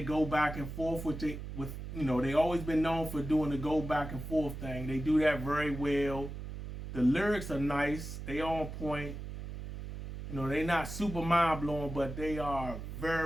go back and forth with you know, they always been known for doing the go back and forth thing. They do that very well. The lyrics are nice. They on point. You know, they not super mind blowing, but they are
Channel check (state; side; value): noise; right; hum, 8 dB below the sound